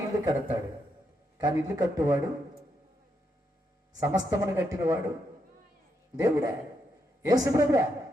ఇల్లు కడతాడు, కానీ ఇల్లు కట్టువాడు, సమస్తమును కట్టినవాడు దేవుడే, యేసు ప్రభువే.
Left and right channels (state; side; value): normal; both; correlation 0.80